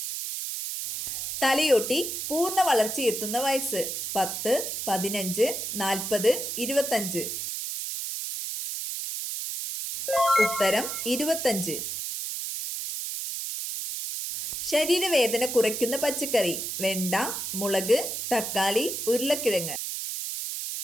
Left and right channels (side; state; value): right; noise; hiss, 4 dB below the sound